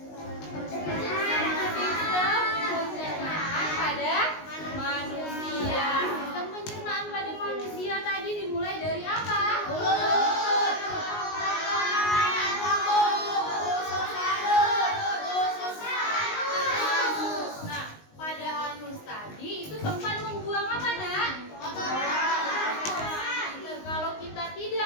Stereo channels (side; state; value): right; late; 19 ms